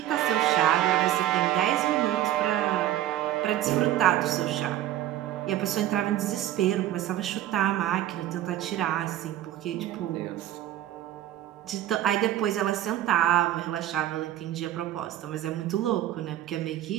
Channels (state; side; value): quieter; left; 13.1 dB